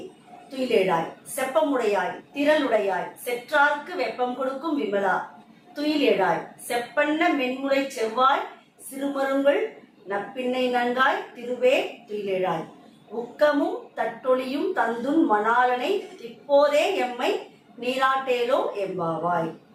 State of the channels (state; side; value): identical; both; correlation 1.00